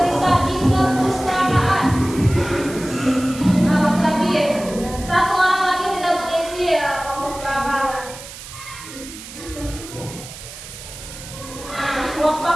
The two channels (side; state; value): right; noise; hiss, 14 dB below the sound